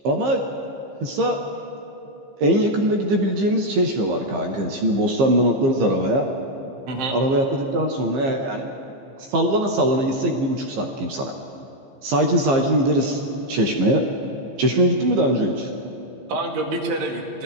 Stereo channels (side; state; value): left; late; 15 ms